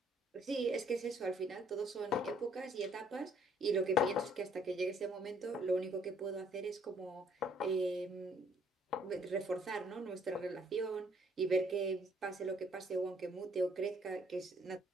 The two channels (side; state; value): both; normal; correlation 0.64